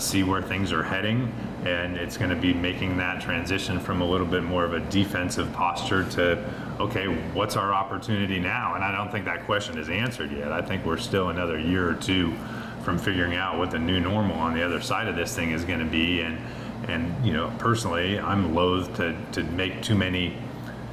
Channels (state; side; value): identical; both; correlation 1.00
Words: where things are heading. And it's going to be making that transition from a little bit more of a defensive posture to, okay, what's our opportunity now? And I don't think that question is answered yet. I think we're still another year or two from figuring out what the new normal on the other side of this thing is going to be. And personally, I'm loath to make too many